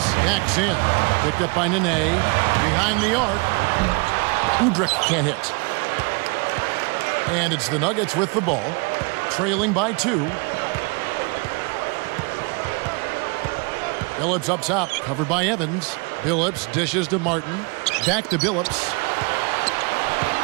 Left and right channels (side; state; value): left; quieter; 31.0 dB